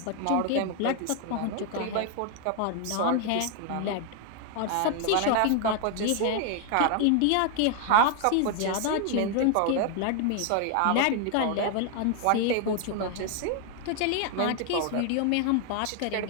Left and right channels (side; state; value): both; different; correlation 0.00